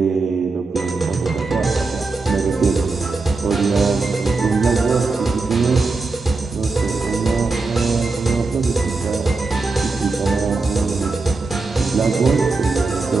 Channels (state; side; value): quieter; left; 3.9 dB